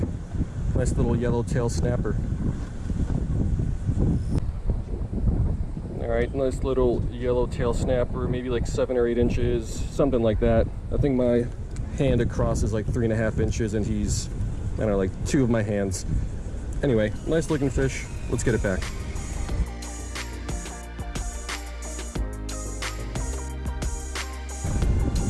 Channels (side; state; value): both; identical; correlation 1.00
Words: Nice little yellowtail snapper. Alright, nice little yellowtail snapper, maybe like 7 or 8 inches, something like that. I think my hand across is like 3.5 inches, and he's, I don't know, like 2 of my hands. Anyway, nice looking fish. Let's get it back.